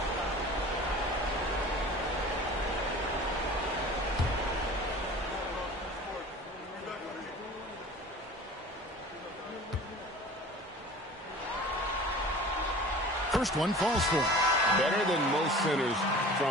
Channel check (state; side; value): normal; both; correlation 0.41